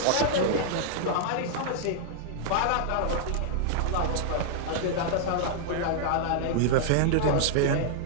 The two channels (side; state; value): both; different; correlation -0.01